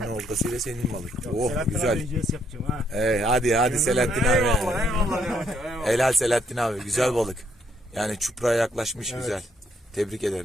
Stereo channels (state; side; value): normal; both; correlation 0.71